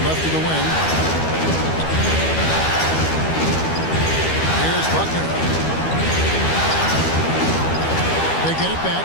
left to the wing. Here's Buckner. They get it back.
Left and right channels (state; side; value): late; right; 12 ms